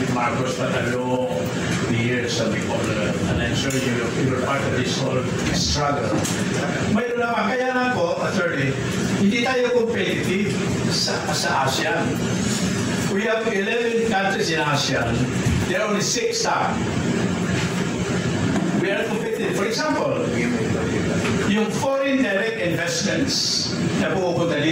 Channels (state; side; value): identical; both; correlation 1.00